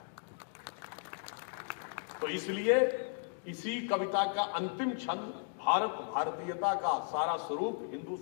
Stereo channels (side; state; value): right; silent; digital silence